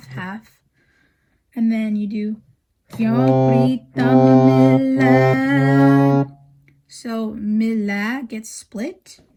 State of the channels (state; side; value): identical; both; correlation 1.00